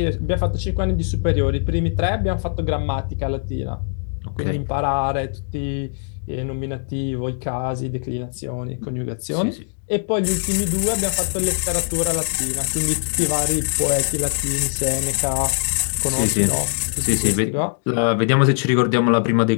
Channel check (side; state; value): right; silent; digital silence